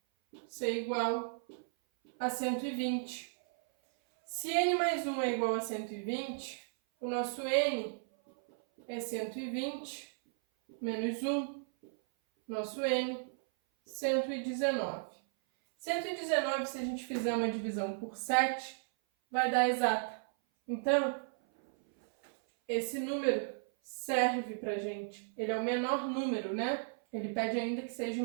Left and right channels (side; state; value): left; silent; 55 dB below the other